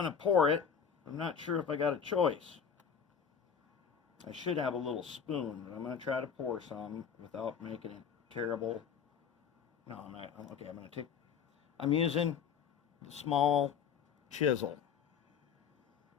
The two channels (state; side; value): quieter; right; 7.2 dB